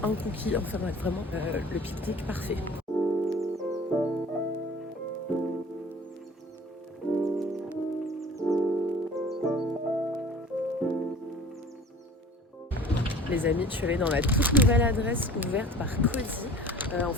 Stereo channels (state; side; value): normal; both; correlation 0.44